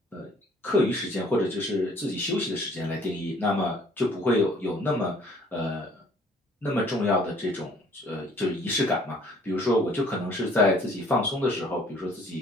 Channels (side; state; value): both; normal; correlation 0.57